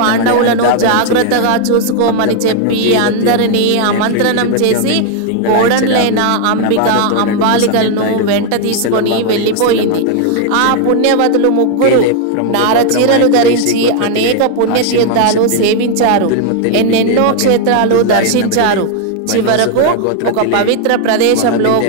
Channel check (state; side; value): different; both; correlation 0.00